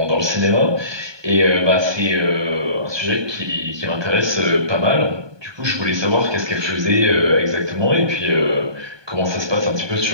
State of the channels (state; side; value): late; left; 1.2 ms